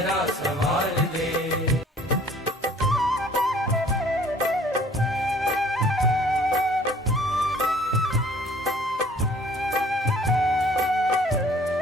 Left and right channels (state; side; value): normal; both; correlation 0.55